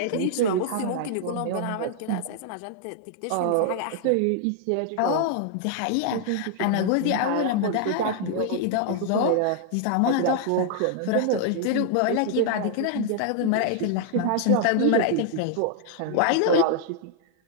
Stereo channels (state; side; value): different; both; correlation 0.00